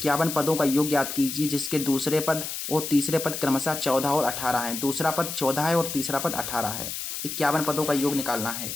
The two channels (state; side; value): noise; left; hiss, 6 dB below the sound